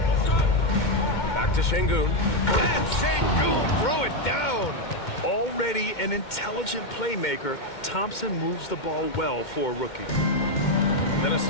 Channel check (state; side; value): late; right; 2.1 ms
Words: Back to Şengün. And Şengün throw it down. Already an intelligent playmaker, Thompson moves the ball well for a rookie.